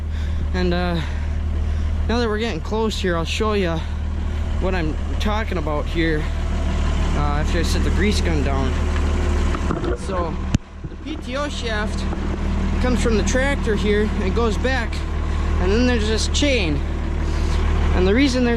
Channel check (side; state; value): both; identical; correlation 1.00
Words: And now that we're getting close here, I'll show you what I'm talking about here. After I set the grease gun down. So the PTO shaft comes from the tractor here, and it goes back, and then there's this chain. And the reason